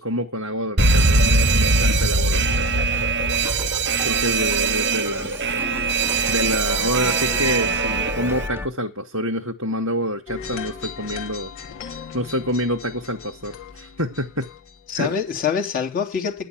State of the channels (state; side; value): normal; both; correlation 0.20